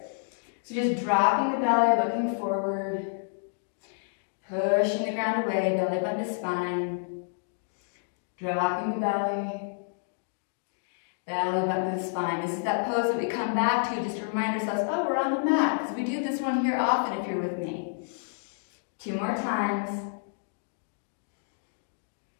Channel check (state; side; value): silent; right; digital silence